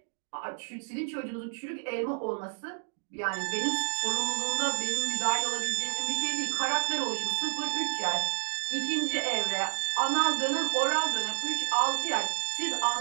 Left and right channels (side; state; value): left; silent; digital silence